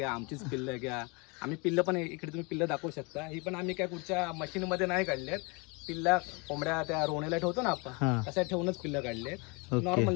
आमचीच पिल्लं घ्या. आम्ही पिल्लं पण इकडे तुम्ही पिल्लं दाखवू शकता. ही पण आम्ही काय कुठच्या मशीनमध्ये नाही काढल्यात. पिल्ला कोंबड्या त्या रोवणीला ठेवतो ना आपण तशा ठेवूनच पिल्लं काढले. नॉर्मल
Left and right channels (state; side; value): quieter; right; 29.8 dB